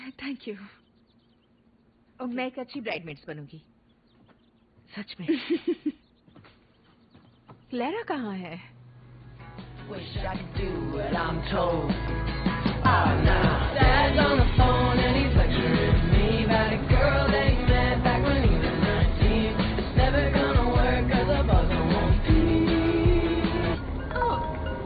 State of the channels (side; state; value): both; identical; correlation 1.00